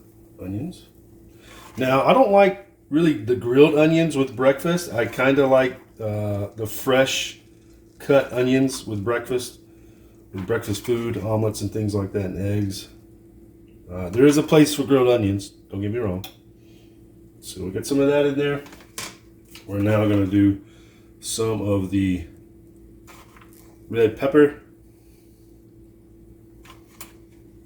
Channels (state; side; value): identical; both; correlation 1.00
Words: onions. Now, I don't like really the grilled onions with breakfast. I kind of like the fresh cut onions with breakfast food, omelets and things like that, and eggs. There is a place for grilled onions, don't get me wrong. So we'll get some of that in there. We're now going to do some of the red pepper.